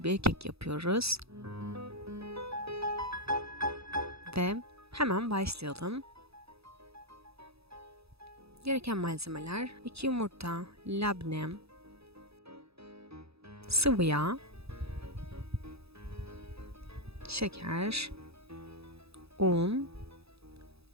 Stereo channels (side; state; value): left; late; 0.78 ms